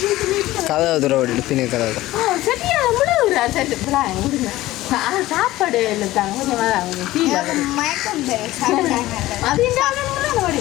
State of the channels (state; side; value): quieter; right; 16.7 dB